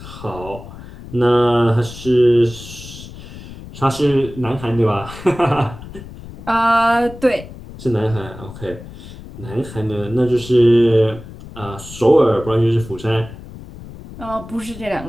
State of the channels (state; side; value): noise; left; rumble, 15 dB below the sound